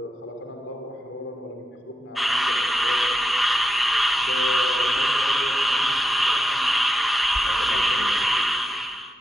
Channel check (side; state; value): both; normal; correlation 0.86